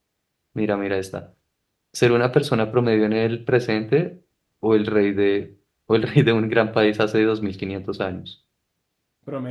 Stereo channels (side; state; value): both; identical; correlation 1.00